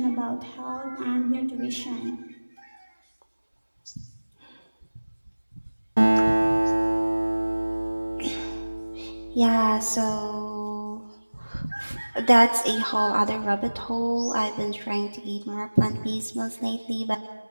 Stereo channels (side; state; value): both; inverted; correlation -1.00